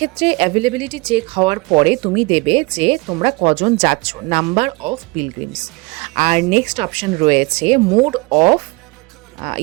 অ্যাভেলেবিলিটি চেক হওয়ার পরে তুমি দেবে যে তোমরা কজন যাচ্ছ, নাম্বার অফ পিলগ্রিমস। আর নেক্সট অপশন রয়েছে মোড অফ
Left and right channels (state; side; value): quieter; left; 26.1 dB